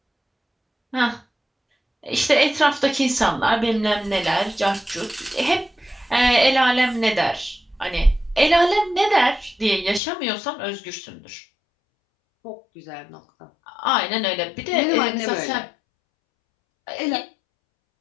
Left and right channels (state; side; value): drops out; right; at 10.0 s